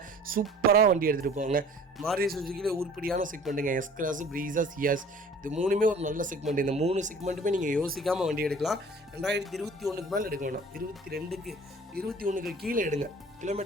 சூப்பராக வண்டி எடுத்துகிட்டு போவாங்க. மாருதி சுசுக்கியில் உருப்படியான செக்மெண்ட்டுங்க. எஸ் கிளாஸ், ப்ரீஸா, சியாஸ் இது 3மே ஒரு நல்ல செக்மெண்ட். இந்த 3 செக்மெண்ட்டுமே நீங்கள் யோசிக்காமல் வண்டி எடுக்கலாம். 2021க்கு மேலே எடுக்க வேணாம், 21க்கு கீழே எடுங்க.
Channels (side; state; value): both; normal; correlation 0.48